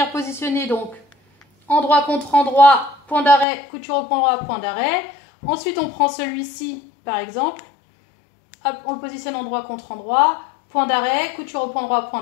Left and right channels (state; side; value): drops out; right; at 3.5 s